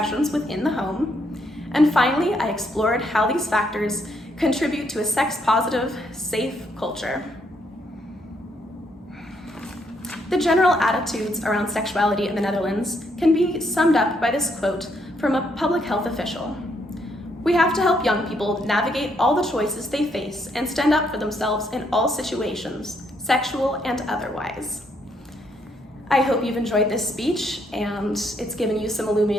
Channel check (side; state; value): both; normal; correlation 0.73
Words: within the home. And finally, I explored how these factors contribute to a sex-positive, safe culture. The general attitudes around sexuality in the Netherlands can be summed up by this quote from a public health official. "We have to help young people navigate all the choices they face and stand up for themselves in all situations, sexual and otherwise." I hope you've enjoyed this speech and it's given you some